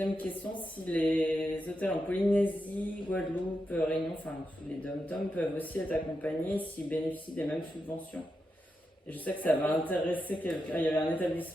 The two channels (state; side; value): normal; both; correlation 0.87